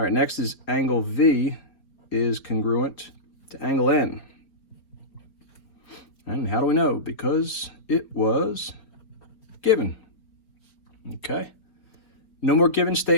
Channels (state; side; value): late; right; 4.2 ms